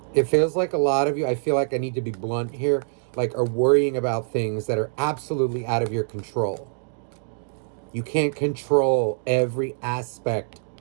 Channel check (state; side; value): silent; left; digital silence